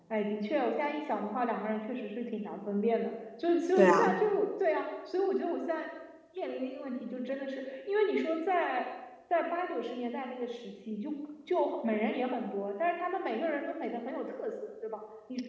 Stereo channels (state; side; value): identical; both; correlation 1.00